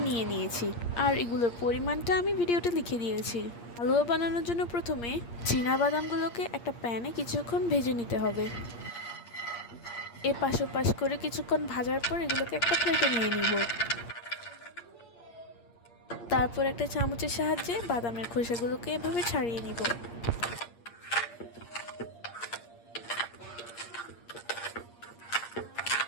নিয়ে নিয়েছি, আর এগুলোর পরিমাণটা আমি ভিডিওতে লিখে দিয়েছি। হালুয়া বানানোর জন্য প্রথমে চীনা বাদামগুলোকে একটা প্যানে কিছুক্ষণ ভেজে নিতে হবে। এপাশ ওপাশ করে কিছুক্ষণ ভাজার পর এগুলোকে একটা প্লেটে নিয়ে নিব। তারপর একটা চামচের সাহায্যে বাদামের খোসাগুলোকে এভাবে ছাড়িয়ে নিব।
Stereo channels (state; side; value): late; right; 8.6 ms